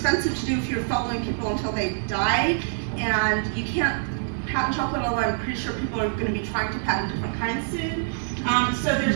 to do if you're following people until they die, and you can't patent chocolate, although I'm pretty sure people are going to be trying to patent different kinds soon. So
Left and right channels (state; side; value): silent; left; digital silence